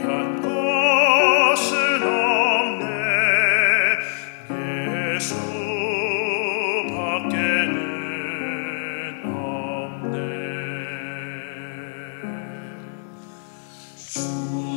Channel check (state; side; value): silent; right; digital silence